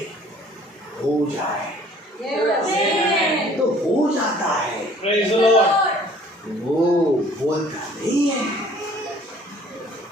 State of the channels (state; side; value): normal; both; correlation 0.54